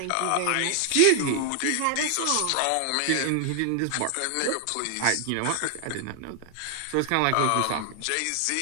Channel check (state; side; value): different; both; correlation 0.00